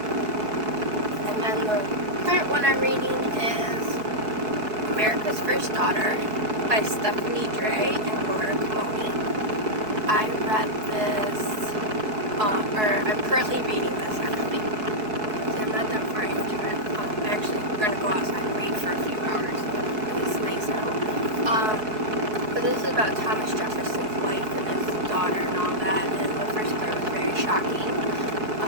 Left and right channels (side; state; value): left; late; 4.7 ms